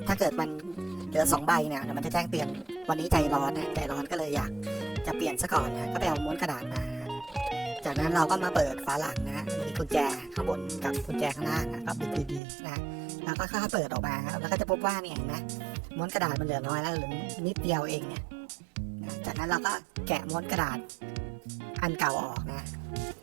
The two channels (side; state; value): left; drops out; at 12.4 s